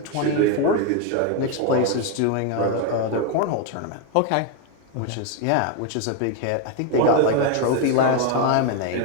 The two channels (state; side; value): different; both; correlation 0.01